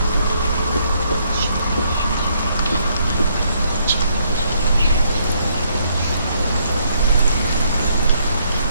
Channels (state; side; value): inverted; both; correlation -0.70